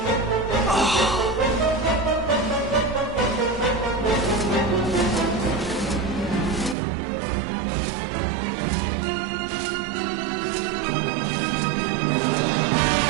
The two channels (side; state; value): left; drops out; at 6.8 s